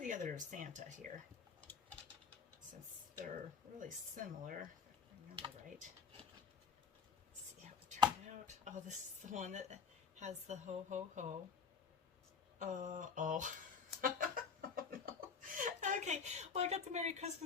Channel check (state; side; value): quieter; right; 6.1 dB